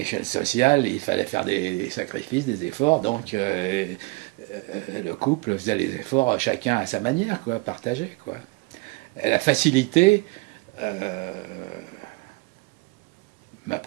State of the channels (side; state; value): left; quieter; 25.2 dB